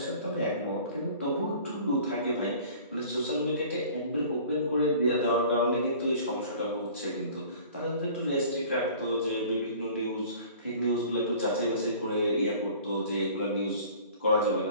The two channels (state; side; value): inverted; both; correlation -0.47